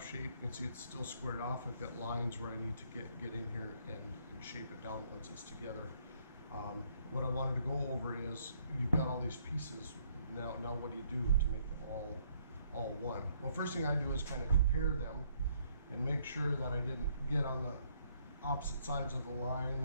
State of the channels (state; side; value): inverted; both; correlation -0.67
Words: shape. You can see it's still squared off. I've got lines where I need to get in here and shape it down once it's together. What I wanted to go over is, you've got all these pieces. Now what do you do to make them all one? Well, first thing I do is kind of compare them and make sure that I didn't get on the opposite sides of the line,